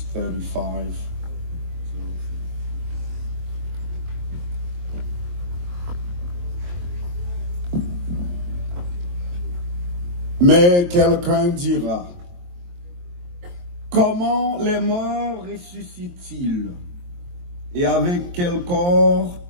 35. Mais quelqu'un dira, comment les morts ressuscitent-ils? Et avec quel corps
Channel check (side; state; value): left; late; 23 ms